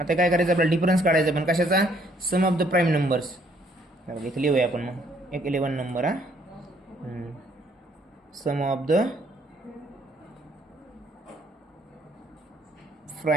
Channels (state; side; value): normal; both; correlation 0.65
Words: काय करायचं आपल्याला डिफरन्स काढायचा, पण कशाचा, sum of the prime numbers. इथे लिहूया आपण मग एक 11 नंबर हा, sum of the